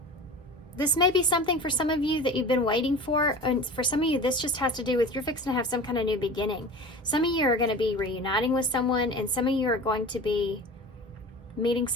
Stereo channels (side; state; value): both; normal; correlation 0.36